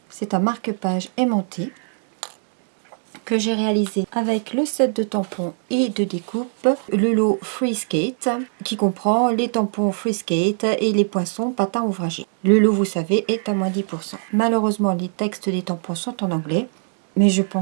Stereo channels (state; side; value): silent; left; 64 dB below the other